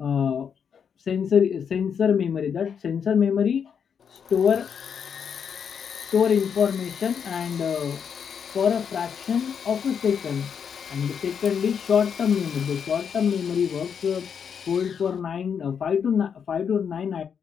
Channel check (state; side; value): quieter; right; 7.2 dB